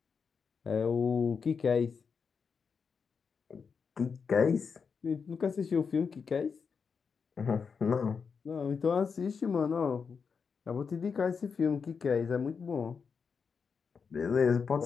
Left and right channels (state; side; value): quieter; right; 5.8 dB